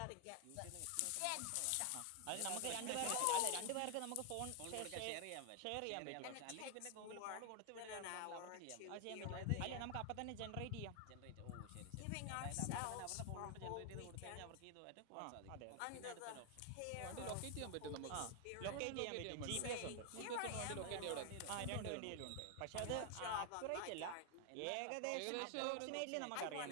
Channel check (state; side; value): different; both; correlation 0.00